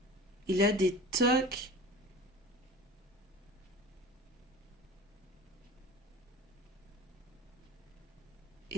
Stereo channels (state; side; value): normal; both; correlation 0.37